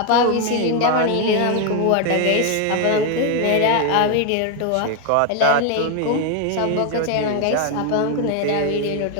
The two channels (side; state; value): both; different; correlation 0.01